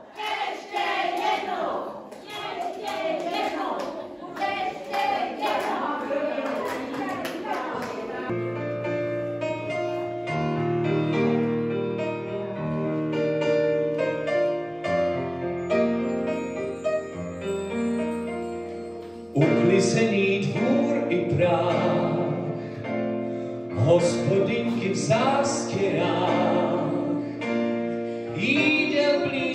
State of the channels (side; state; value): both; identical; correlation 1.00